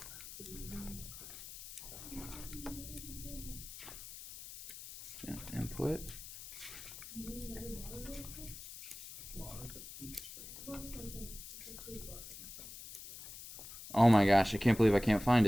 Yeah, input. Oh my gosh, I can't believe I can't find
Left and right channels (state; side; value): noise; left; hiss, 13 dB below the sound